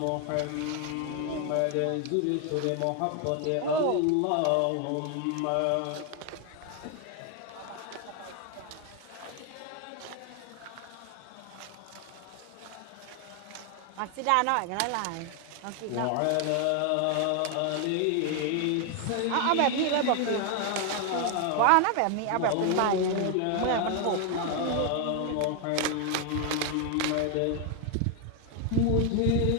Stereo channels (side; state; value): both; different; correlation 0.00